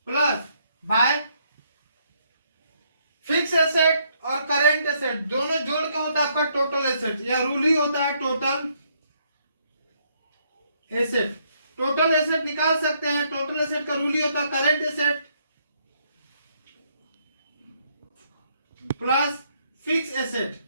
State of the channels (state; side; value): inverted; both; correlation -0.71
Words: plus by fix asset और करेंट एसेट, दोनों जोड़ के होता है आपका टोटल एसेट, या रूल ही होता है टोटल एसेट। टोटल एसेट निकाल सकते हैं, टोटल एसेट का रूल ही होता है current asset plus fix asset,